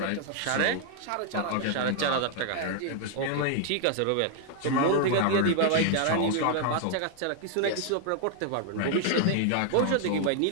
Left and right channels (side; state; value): both; different; correlation 0.00